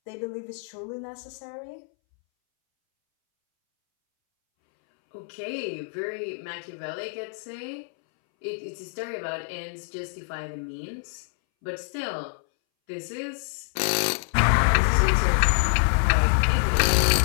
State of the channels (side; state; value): right; silent; 61 dB below the other